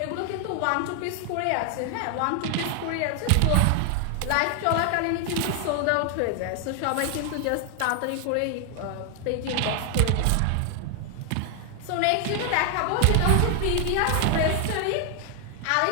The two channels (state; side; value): different; both; correlation 0.00